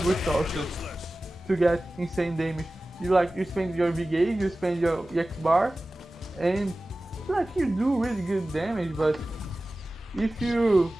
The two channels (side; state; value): both; normal; correlation 0.96